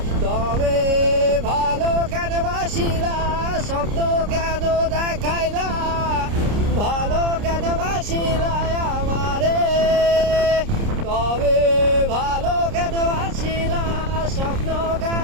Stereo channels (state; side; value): late; left; 30 ms